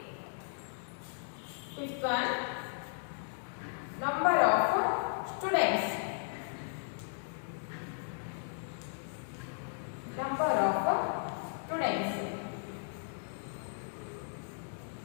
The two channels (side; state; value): right; silent; digital silence